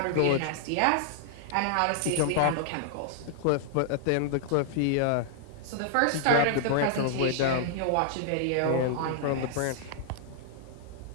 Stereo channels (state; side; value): different; both; correlation -0.01